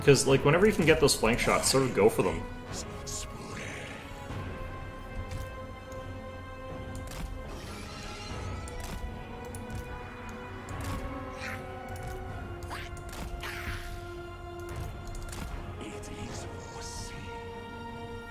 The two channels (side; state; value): both; identical; correlation 1.00